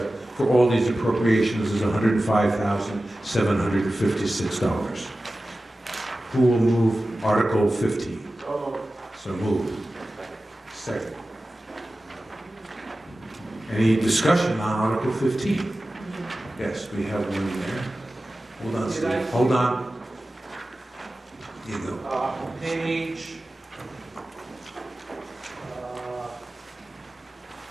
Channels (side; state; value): both; normal; correlation 0.95